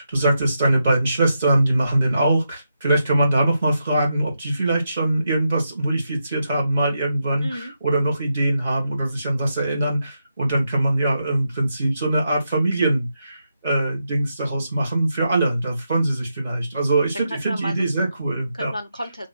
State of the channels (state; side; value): inverted; both; correlation -0.85